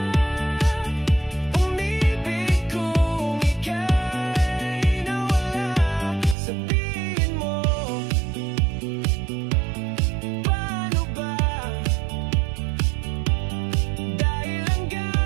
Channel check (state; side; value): drops out; left; at 6.4 s